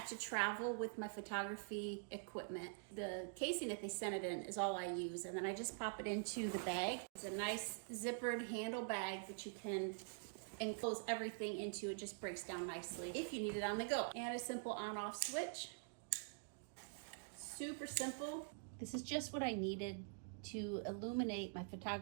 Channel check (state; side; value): silent; left; digital silence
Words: to travel with my photography equipment. The casing that they sent it in is all I use, and then I just pop it into the bag. It's a nice zippered handle bag that you can enclose everything into. It just breaks down nicely if you need it on the go. And a simple on-off switch. Super simple. This is just what I needed to illuminate my